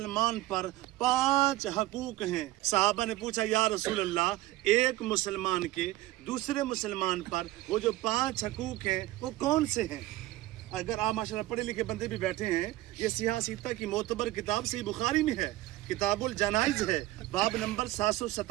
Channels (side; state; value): left; quieter; 17.0 dB